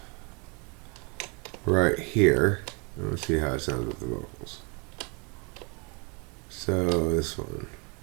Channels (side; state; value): left; quieter; 32.1 dB